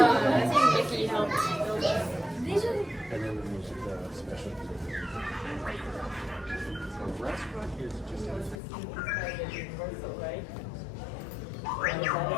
think Mickey helped build it. And then there's special. The restaurant is just.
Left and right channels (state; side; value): drops out; right; at 8.6 s